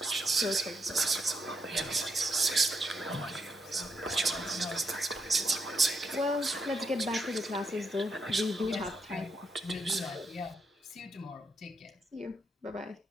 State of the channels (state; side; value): normal; both; correlation 0.79